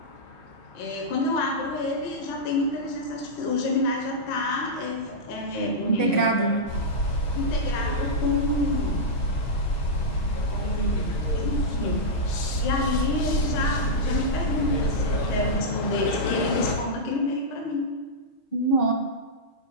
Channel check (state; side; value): late; right; 6.3 ms